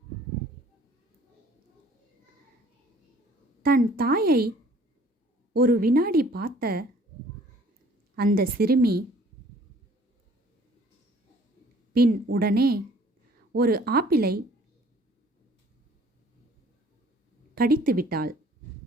தன் தாயை ஒரு வினாடி பார்த்த அந்த சிறுமி பின் உடனே ஒரு ஆப்பிளை கடித்து விட்டாள்.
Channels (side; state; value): both; normal; correlation 0.55